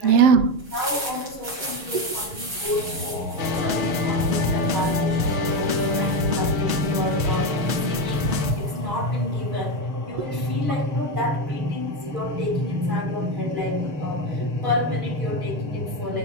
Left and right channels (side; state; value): left; late; 6.9 ms